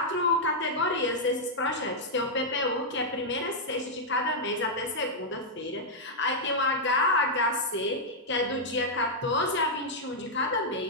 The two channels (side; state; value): both; normal; correlation -0.05